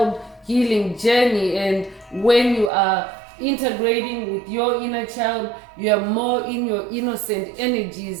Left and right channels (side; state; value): left; drops out; at 2.7 s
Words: healing journey, and when you are integrating with your inner child, you are more in your innocent